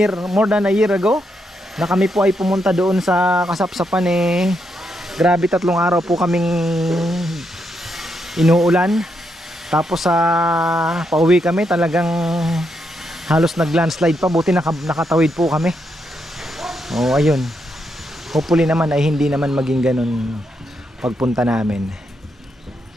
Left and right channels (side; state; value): both; normal; correlation 0.80